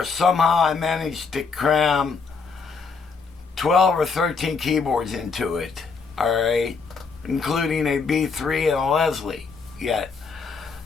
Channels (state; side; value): quieter; right; 5.0 dB